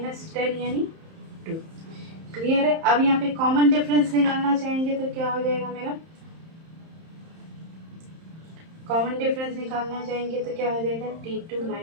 10 यानी 2। क्लियर है। अब यहाँ पे कॉमन डिफरेंस निकालना चाहेंगे तो क्या हो जाएगा मेरा, कॉमन डिफरेंस निकालना चाहेंगे तो क्या हो जाएगा, T2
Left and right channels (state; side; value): late; left; 31 ms